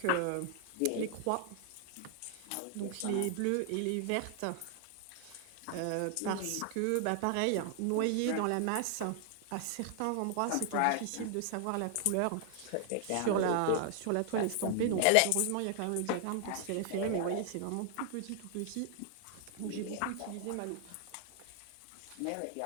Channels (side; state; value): both; different; correlation 0.00